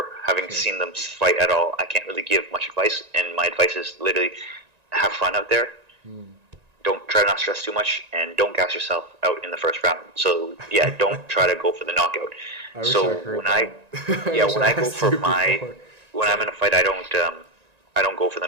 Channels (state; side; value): late; left; 1.9 ms